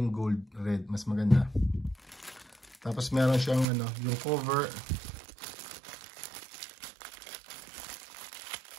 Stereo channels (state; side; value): drops out; left; at 3.7 s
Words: gold red, mas maganda. Tapos meron siyang yung cover.